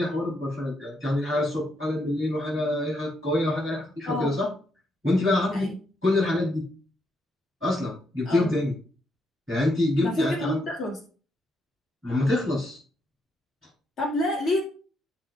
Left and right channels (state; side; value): normal; both; correlation 0.77